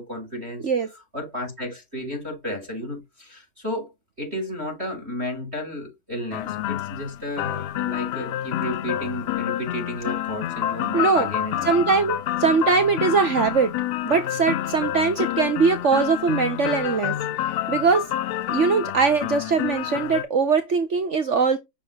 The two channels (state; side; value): late; left; 3.4 ms